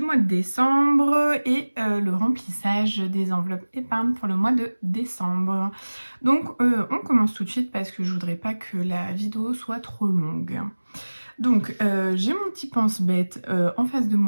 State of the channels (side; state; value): both; inverted; correlation -1.00